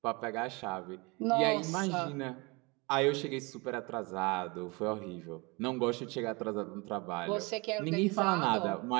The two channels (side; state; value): left; quieter; 27.4 dB